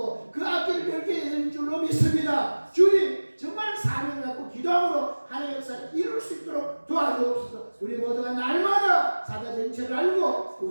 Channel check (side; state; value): both; inverted; correlation -1.00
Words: 그 앞길을 멸게 되는 줄로 믿습니다. 주님 정말 사명을 갖고 기도함으로 하나님의 역사를 이룰 수 있도록 도와주옵소서. 우리 모두가 날마다 사단 정체를 알고